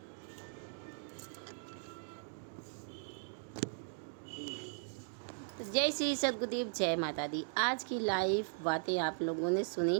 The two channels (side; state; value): left; silent; digital silence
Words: जय श्री सद्गुरुदेव, जय माता दी। आज की लाइव बातें आप लोगों ने सुनी